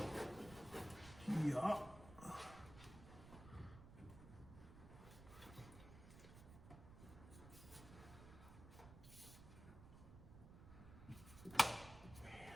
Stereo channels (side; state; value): right; noise; rumble, 14 dB below the sound